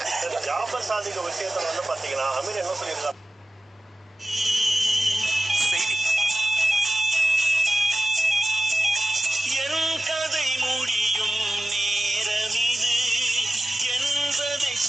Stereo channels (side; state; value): both; normal; correlation 0.95